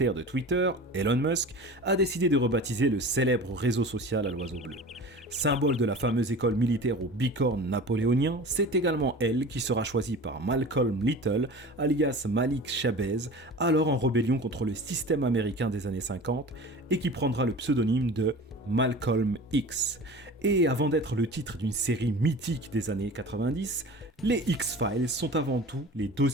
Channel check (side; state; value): both; normal; correlation 0.37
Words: de Twitter, Elon Musk, a décidé de rebaptiser le célèbre réseau social à l'oiseau bleu. Symbole de la fameuse école militaire aux bicornes napoléoniens, c'est également elle qui sera choisie par Malcolm Little, alias Malik Shabazz, alors en rébellion contre le système américain des années 50, et qui prendra le pseudonyme de Malcolm X. Et avant d'être le titre d'une série mythique des années 90, les X-Files sont avant tout les